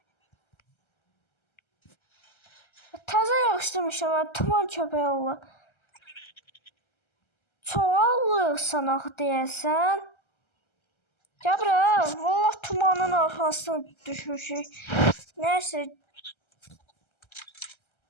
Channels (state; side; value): late; right; 1.3 ms